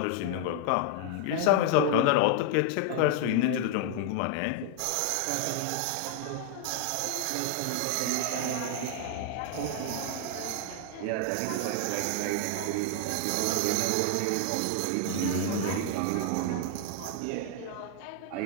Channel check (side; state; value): both; different; correlation 0.00